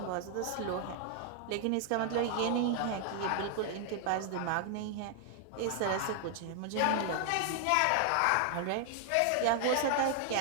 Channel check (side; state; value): both; different; correlation 0.00